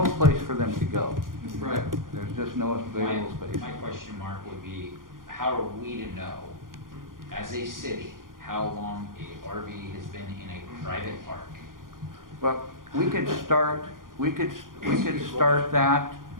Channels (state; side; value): late; left; 0.90 ms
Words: place for them to go. Right. There's just no available space. My question mark would be, how are we to know, as a city, how long a RV has been in a private park? Well, we could start that